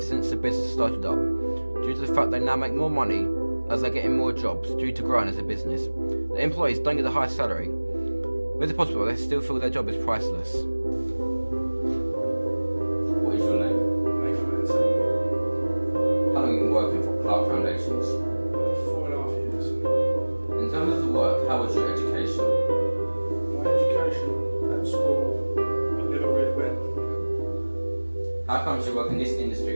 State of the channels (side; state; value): both; inverted; correlation -1.00